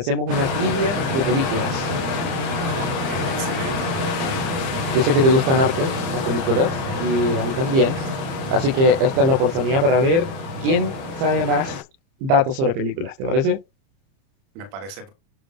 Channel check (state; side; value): late; left; 30 ms